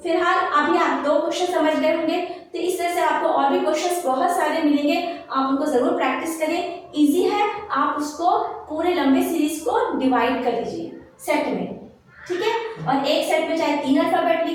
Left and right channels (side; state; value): both; identical; correlation 1.00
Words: फिलहाल अभी आप 2 क्वेश्चन समझ गए होंगे, तो इस तरह से आपको और भी क्वेश्चंस बहुत सारे मिलेंगे, आप उनको जरूर प्रैक्टिस करें। इजी है, आप उसको पूरे लंबे सीरीज को डिवाइड कर लीजिए सेट में, ठीक है। और एक सेट में चाहे 3 अल्फाबेट